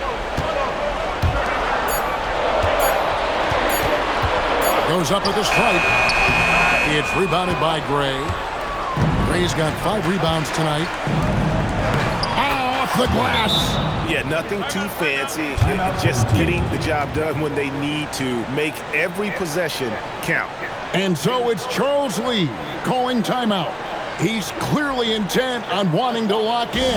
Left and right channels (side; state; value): both; identical; correlation 1.00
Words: Goes up at the stripe. It's rebounded by Gray. Gray's got 5 rebounds tonight. Off the glass. Yeah, nothing too fancy. Just getting the job done when they need to. Make every possession count. And so it's Charles Lee calling timeout. He's clearly intent on wanting to lock